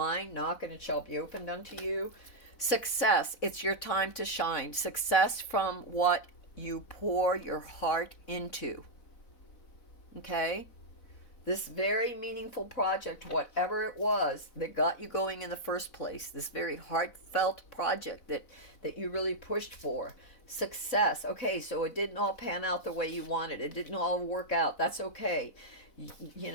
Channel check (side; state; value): right; late; 4.0 ms